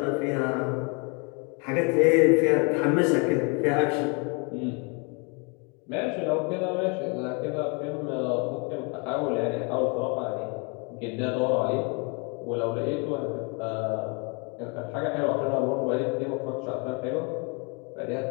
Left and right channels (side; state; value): right; quieter; 33.1 dB